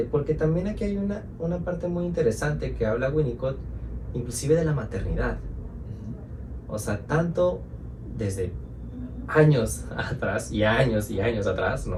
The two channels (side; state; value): both; identical; correlation 1.00